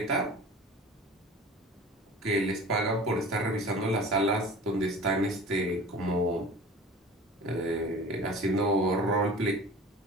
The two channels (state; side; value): normal; both; correlation 0.39